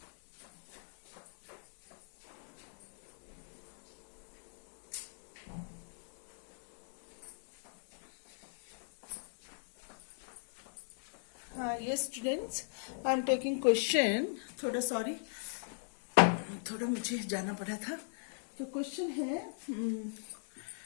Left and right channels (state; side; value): silent; right; digital silence